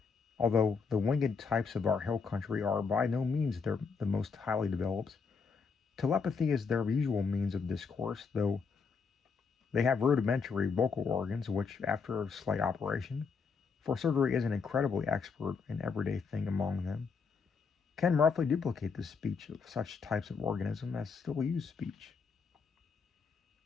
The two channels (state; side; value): quieter; right; 5.4 dB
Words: although the winged types of our hill country are by no means the most highly developed. Telepathy is their usual means of discourse, though they have rudimentary vocal organs which, after a slight operation, for surgery is an incredibly expert and everyday thing among them, can roughly duplicate the speech of such types of organism as still use speech.